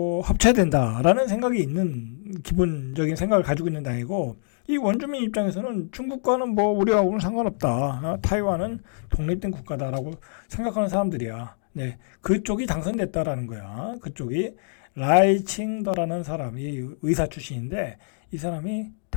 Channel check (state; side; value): silent; right; digital silence